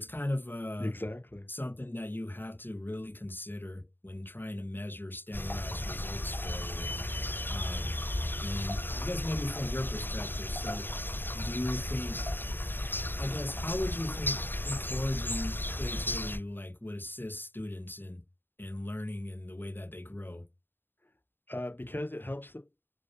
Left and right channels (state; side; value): late; right; 0.096 ms